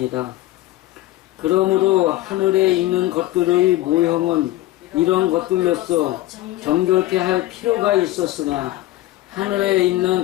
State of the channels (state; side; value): quieter; right; 16.3 dB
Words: 그러므로 하늘에 있는 것들의 모형은 이런 것들로서 정결케 할 필요가 있었으나 하늘에